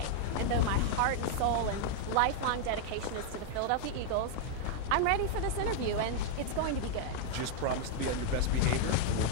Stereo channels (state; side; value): different; both; correlation 0.00